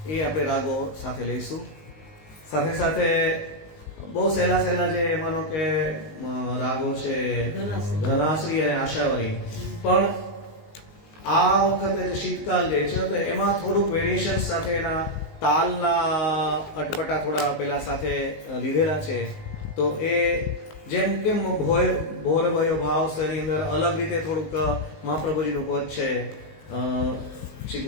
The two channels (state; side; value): late; right; 19 ms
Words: એ આપણે રાગો સાથે લઈશું. સાથે સાથે બહુ સહેલા જે માનો કે રાગો છે ધનાશ્રી અને આશાવરી, પણ આ વખતે જે શીતકાલ જે છે તો એમાં થોડુંક વેરિએશન સાથે એના તાલના અટપટા થોડા પેલા સાથે લીધેલા છે. તો એ જેમ કે ભોર ભયો ભાવ છે એની અંદર અલગ રીતે થોડુંક મહાપ્રભુજીનું પદ છે, શ્રી